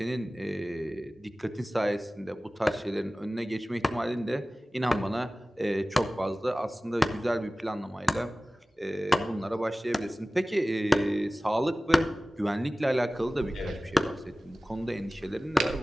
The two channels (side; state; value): both; normal; correlation 0.97